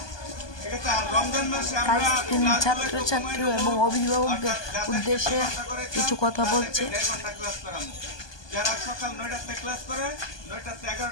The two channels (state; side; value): late; right; 1.2 ms